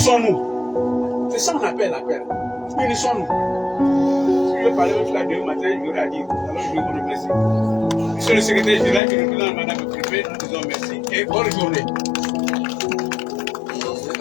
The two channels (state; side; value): drops out; right; at 9.0 s